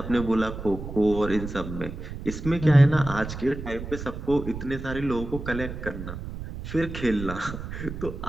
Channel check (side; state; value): right; noise; rumble, 8 dB below the sound